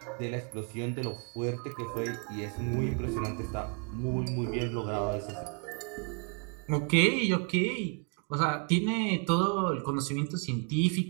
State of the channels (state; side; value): quieter; left; 38.5 dB